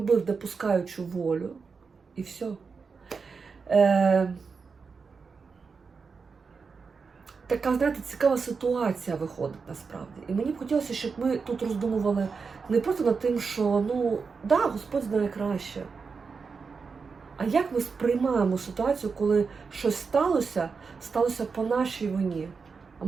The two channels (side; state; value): left; quieter; 5.1 dB